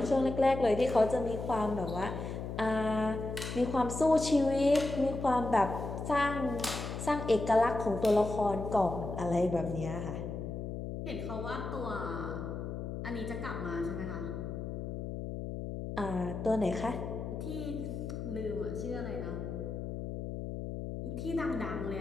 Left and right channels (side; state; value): left; noise; hum, 6 dB below the sound